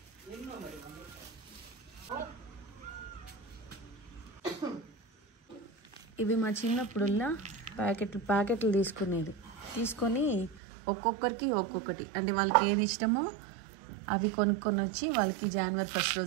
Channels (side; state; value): left; drops out; at 10.6 s